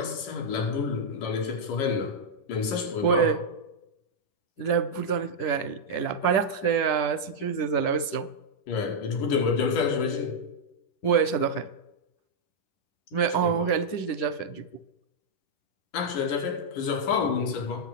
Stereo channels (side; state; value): right; late; 10 ms